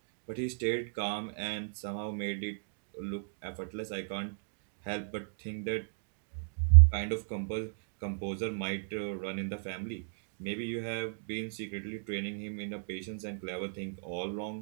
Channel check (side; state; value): left; silent; digital silence